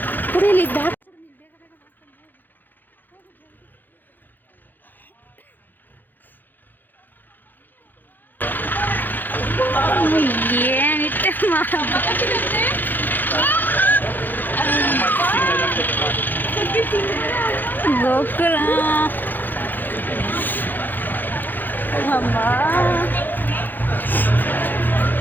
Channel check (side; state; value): right; late; 0.088 ms